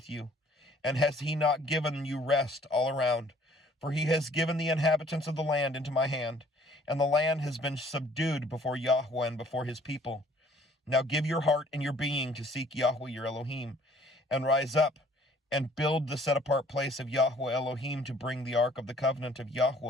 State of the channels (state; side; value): normal; both; correlation 0.57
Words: you? And has he not given you rest all around? For he has given the inhabitants of the land into my hand, and the land has been subdued before Yahweh and before his people. Now give your heart and your being to seek Yahweh your Elohim, and rise up, and build the set-apart place of Yahweh Elohim to bring the ark of the covenant of